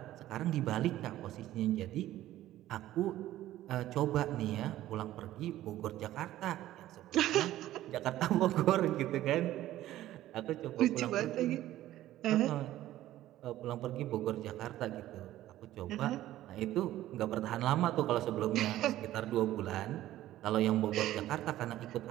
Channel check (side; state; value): left; quieter; 14.3 dB